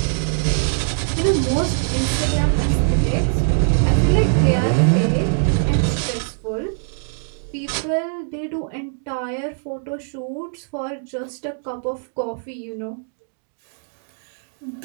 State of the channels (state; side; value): silent; left; digital silence